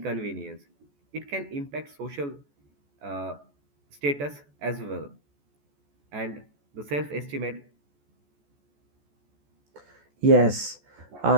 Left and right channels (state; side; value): late; left; 14 ms